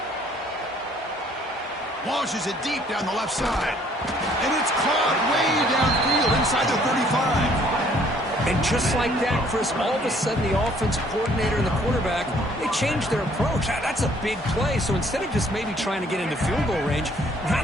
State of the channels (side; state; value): both; normal; correlation 0.61